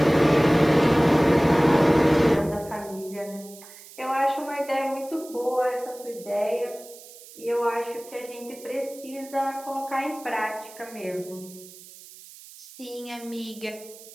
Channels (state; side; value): noise; right; hiss, 19 dB below the sound